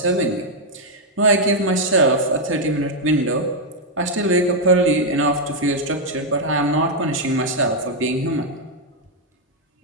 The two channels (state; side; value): normal; both; correlation -0.01